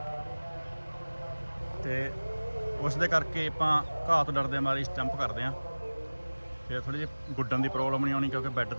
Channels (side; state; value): both; inverted; correlation -1.00